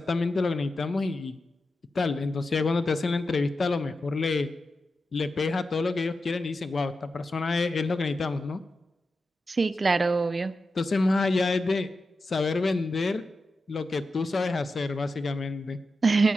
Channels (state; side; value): normal; both; correlation 0.90